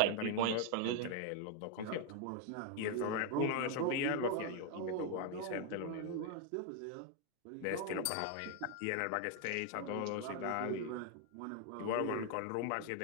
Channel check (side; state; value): both; different; correlation 0.01